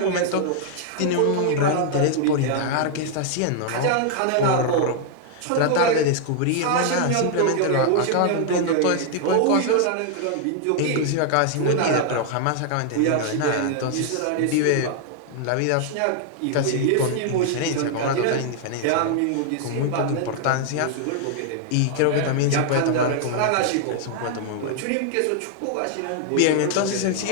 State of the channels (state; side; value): different; both; correlation 0.00